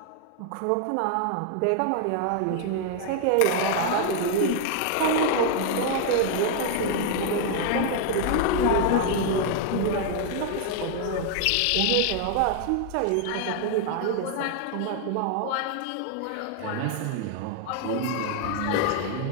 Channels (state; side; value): different; both; correlation 0.00